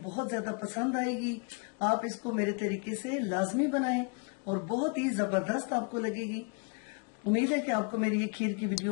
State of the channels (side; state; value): right; quieter; 36.6 dB